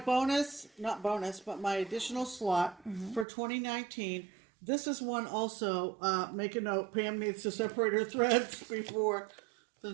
my additional slot for 2019. This is one also, make a note, Pam needs to separate her threads before the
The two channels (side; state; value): left; drops out; at 3.2 s